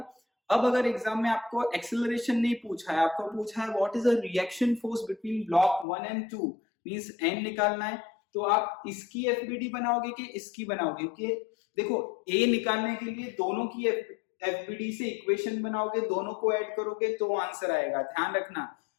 अब अगर एग्जाम में आपको एक्सेलरेशन नहीं पूछा है, आपको पूछा है what is a reaction force between block 1 and 2, means n निकालना है, तो आप इसकी एफबीडी बनाओगे कि इसकी बनाओगे? क्योंकि देखो a निकालने के लिए दोनों की एफबीडी से इक्वेशन बनाओगे, दोनों को ऐड करोगे तो आंसर आएगा। ध्यान रखना,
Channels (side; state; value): right; drops out; at 5.9 s